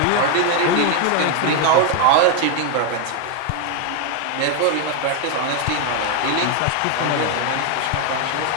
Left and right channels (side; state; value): both; different; correlation 0.01